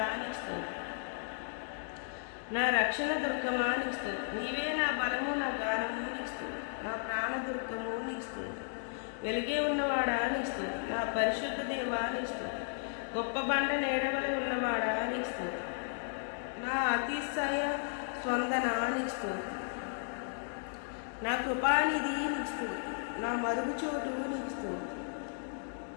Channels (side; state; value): right; silent; digital silence